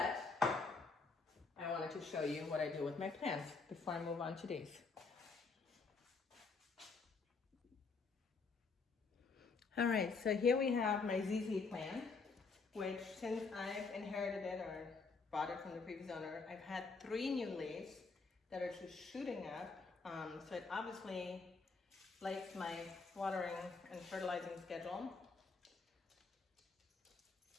I wanted to show you what I do with my plants before I move on to these. All right, so here we have my ZZ plant, which since I've inherited it or bought it from the previous owner, I've had 3 new leaves that are just shooting up. So it obviously likes my watering and fertilizing schedule.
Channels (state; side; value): quieter; right; 4.4 dB